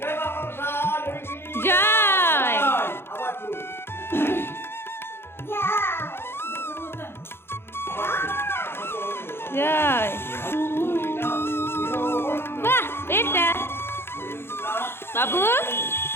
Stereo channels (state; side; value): late; right; 0.11 ms